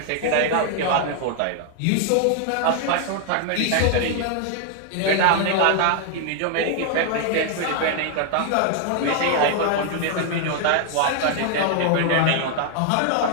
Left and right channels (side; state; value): both; different; correlation 0.00